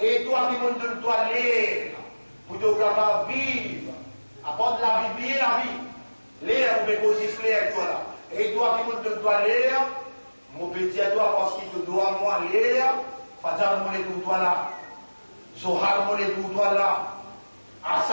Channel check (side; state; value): both; inverted; correlation -1.00